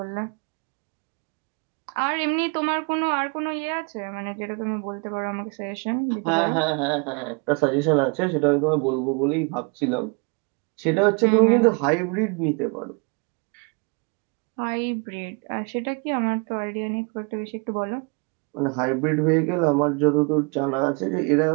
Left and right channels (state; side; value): quieter; left; 33.4 dB